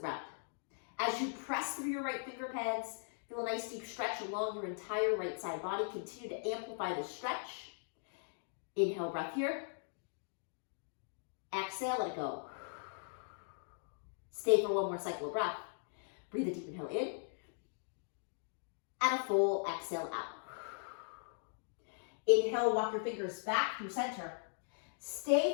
ground. As you press through your right finger pads, feel a nice deep stretch along your entire right side body. Continue to amplify this stretch. Inhale, breath here. Exhale, let it go. Stay for one more cycle of breath. Breathe a deep inhale in. And a full exhale out. Inhale, walk your fingers back through center.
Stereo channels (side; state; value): right; silent; digital silence